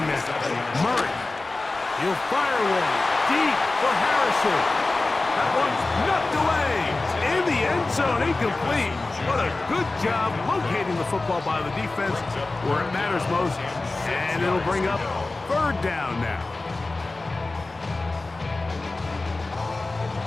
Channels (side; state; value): right; quieter; 3.2 dB